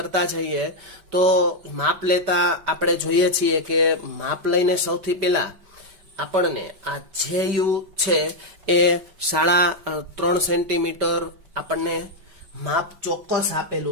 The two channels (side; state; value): left; late; 5.2 ms